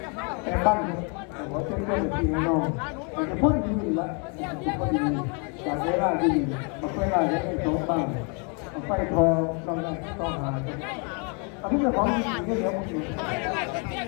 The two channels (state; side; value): quieter; right; 36.4 dB